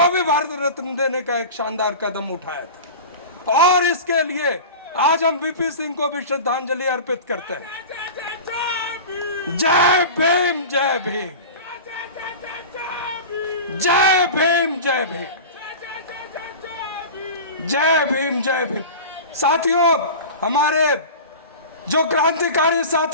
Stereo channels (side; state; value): both; inverted; correlation -0.32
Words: भी भारत रत्न देने का एक शानदार कदम उठाया था। और इसके लिए आज हम वीपी सिंह को भी श्रद्धांजलि अर्पित करते हैं। जय भीम, जय भीम, जय भीम, जय भीम, जय भीम, जय भीम। साथियों, हमारे जो क्रांतिकारी